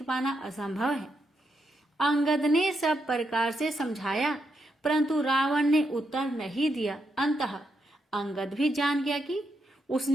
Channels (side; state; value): both; normal; correlation 0.82